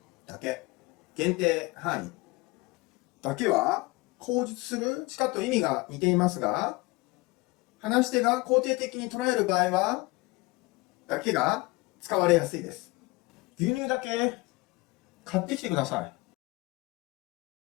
だけ、限定範囲だけは口述するしかと意味が似ていますが、話し手が肯定的に捉える場合は、だけが使われやすいです。牛乳だけ買ってきてくださ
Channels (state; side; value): quieter; right; 23.2 dB